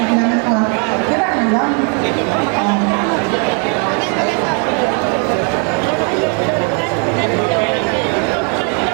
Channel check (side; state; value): left; quieter; 38.6 dB